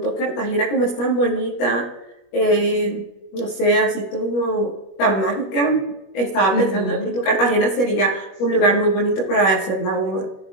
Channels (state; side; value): late; right; 21 ms